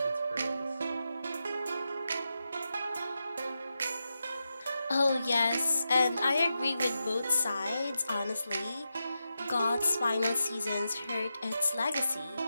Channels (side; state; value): both; inverted; correlation -0.88